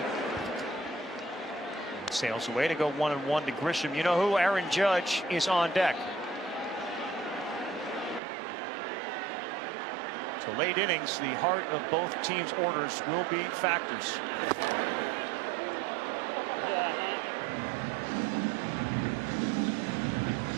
Sails away to go 1-1 to Grisham. You know who? Aaron Judge is on deck. So late innings, the heart of both teams' orders will be factors.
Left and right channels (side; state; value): left; drops out; at 8.2 s